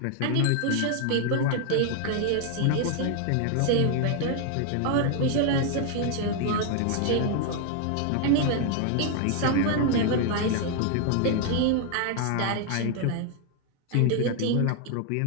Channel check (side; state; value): both; different; correlation 0.00